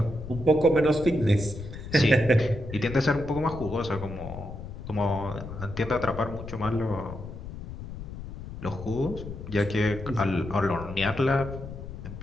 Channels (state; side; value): noise; left; rumble, 10 dB below the sound